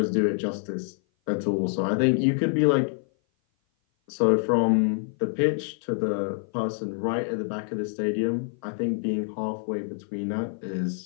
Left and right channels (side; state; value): right; silent; 56 dB below the other